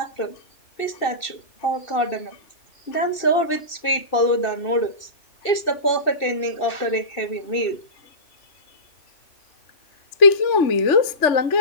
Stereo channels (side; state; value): right; late; 2.7 ms